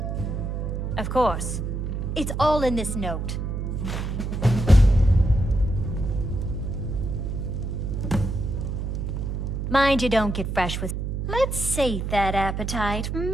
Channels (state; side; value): noise; right; hum, 3 dB below the sound